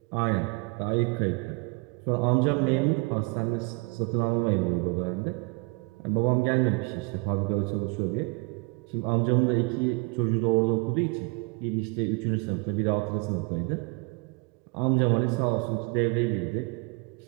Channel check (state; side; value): quieter; left; 30.5 dB